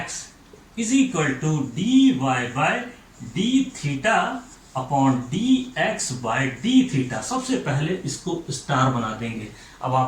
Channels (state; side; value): identical; both; correlation 1.00